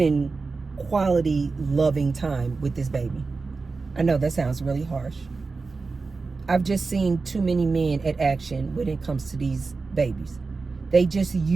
quality, loving time with this baby. I know that sounds really harsh. I've just seen too many men at action when it comes to these babies. They just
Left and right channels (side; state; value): left; quieter; 4.2 dB